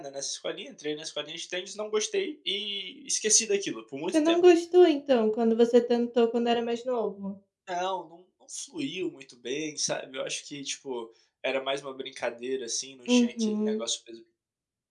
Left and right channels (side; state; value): both; identical; correlation 1.00